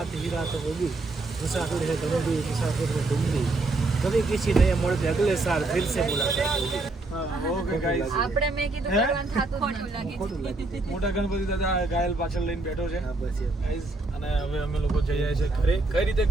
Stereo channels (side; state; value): left; quieter; 3.1 dB